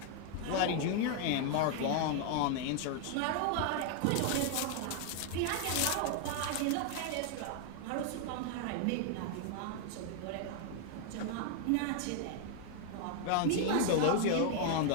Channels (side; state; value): both; different; correlation 0.00